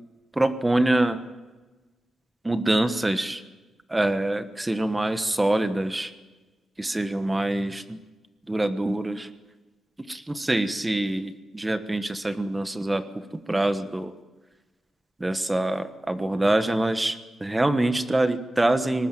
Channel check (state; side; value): normal; both; correlation 0.97